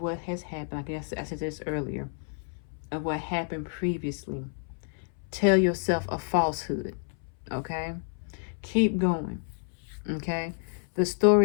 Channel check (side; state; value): right; silent; 58 dB below the other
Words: what has happened, I guess I said this earlier, of what happened previously, tell yourself a falsehood. Okay, keep going. Okay, the